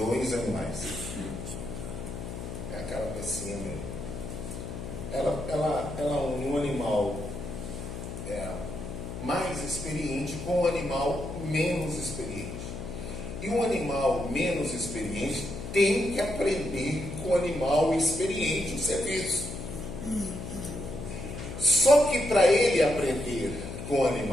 animais. É aquela pecinha mesmo. Ela une um animal mais experiente com um animal menos experiente. E um animal menos experiente tem que aprender com o animal experiente o serviço. Só que para ele aprender com o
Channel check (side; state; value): left; noise; hum, 8 dB below the sound